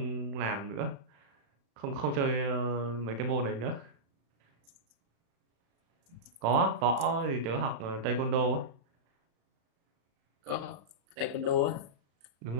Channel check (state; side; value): late; left; 35 ms